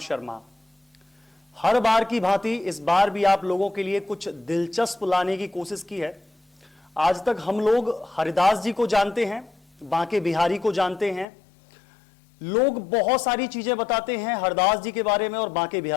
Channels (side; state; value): right; drops out; at 11.2 s